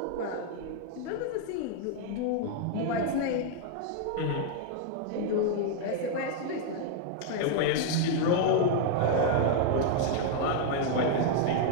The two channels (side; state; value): both; different; correlation 0.00